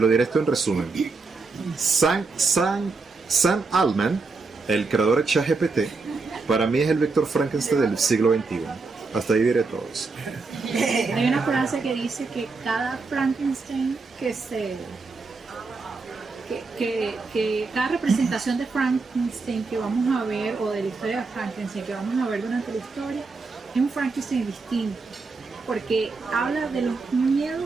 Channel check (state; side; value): quieter; left; 4.1 dB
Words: diré esto en resumen. Sam Altman, el creador de ChatGPT, para mí es el Víctor Frankenstein del siglo XXI. Hasta ahí diré todo eso. Hay una frase que dice que cada Frankenstein que cada representación de Frankenstein que vamos a ver, o de la historia de Frankenstein que vamos a ver durante la historia, es un Frankenstein distinto, porque habla de los